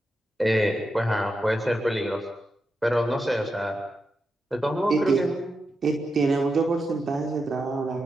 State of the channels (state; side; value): normal; both; correlation 0.87